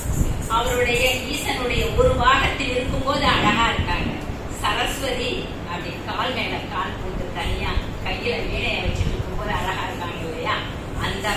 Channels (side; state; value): both; identical; correlation 1.00